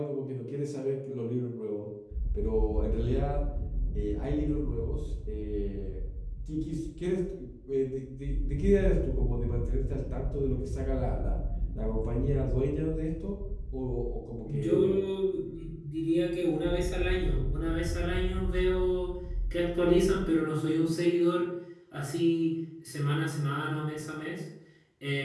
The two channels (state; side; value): identical; both; correlation 1.00